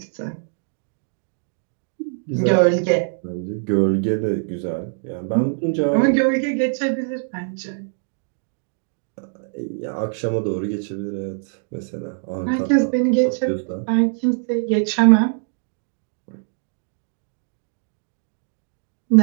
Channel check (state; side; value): silent; left; digital silence